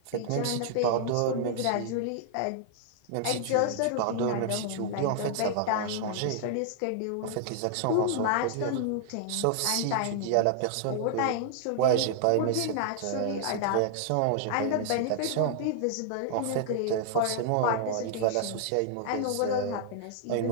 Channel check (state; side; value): different; both; correlation -0.01